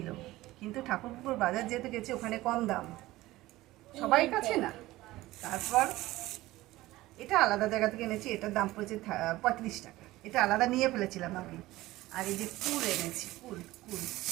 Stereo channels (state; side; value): quieter; left; 17.7 dB